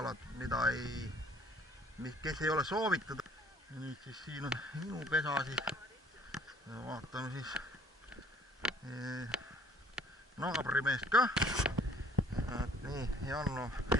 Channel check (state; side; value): normal; both; correlation 0.56